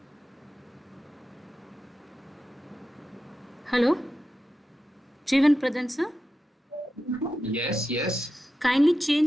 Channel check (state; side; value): normal; both; correlation 0.91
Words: Hello, Jeevan Pradhan sir. Yes, yes. Kindly change